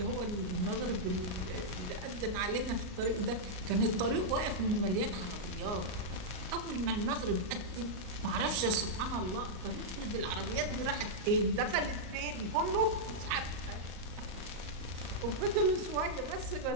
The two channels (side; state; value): left; late; 38 ms